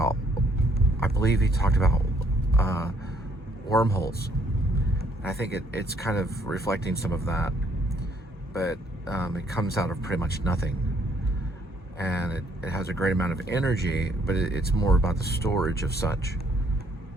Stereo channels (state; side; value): normal; both; correlation 0.66